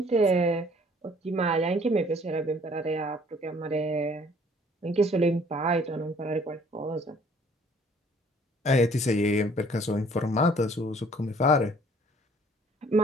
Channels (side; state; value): both; normal; correlation 0.57